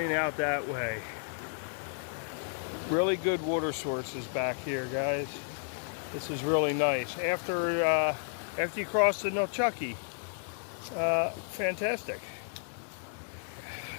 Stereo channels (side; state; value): right; silent; digital silence